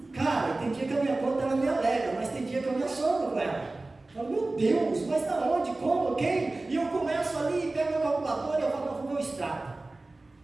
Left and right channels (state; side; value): quieter; left; 3.1 dB